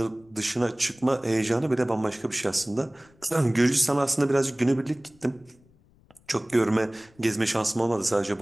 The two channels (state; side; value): noise; left; rumble, 30 dB below the sound